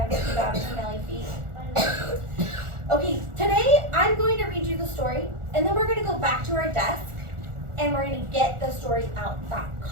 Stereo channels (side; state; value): left; late; 1.4 ms